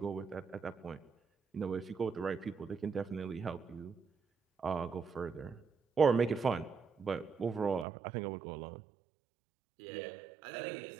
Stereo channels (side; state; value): left; drops out; at 7.9 s